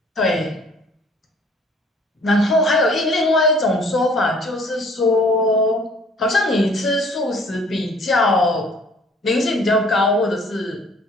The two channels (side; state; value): both; normal; correlation 0.56